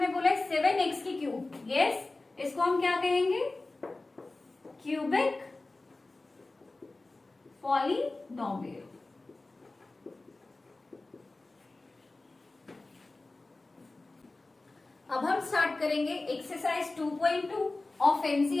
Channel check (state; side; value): quieter; right; 3.2 dB